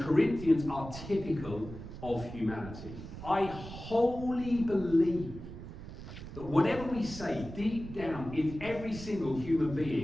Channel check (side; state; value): right; noise; rumble, 11 dB below the sound